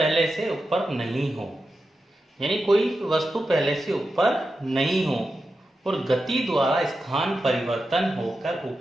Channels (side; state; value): both; normal; correlation 0.90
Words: से ऊपर नहीं हो, यानी कोई वस्तु पहले से ऊपर नहीं हो और गति द्वारा स्थान परिवर्तन होकर